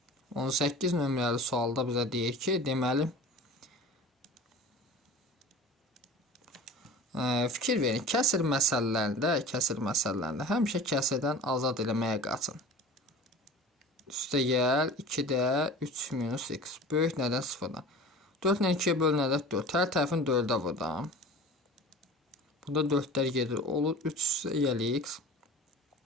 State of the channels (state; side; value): normal; both; correlation 0.38